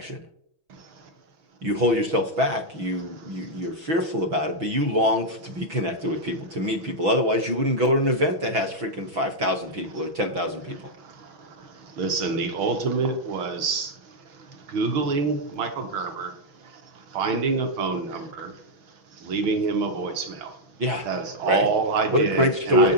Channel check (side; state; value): left; late; 6.1 ms